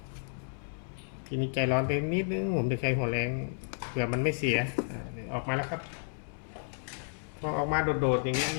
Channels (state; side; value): silent; right; 57 dB below the other